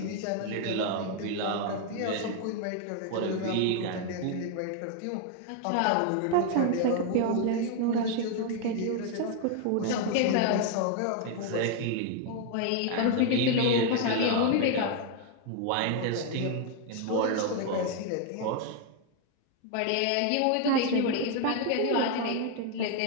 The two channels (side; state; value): both; different; correlation 0.01